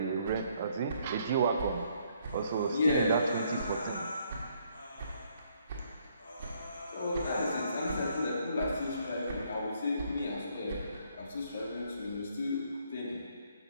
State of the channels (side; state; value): both; inverted; correlation -0.69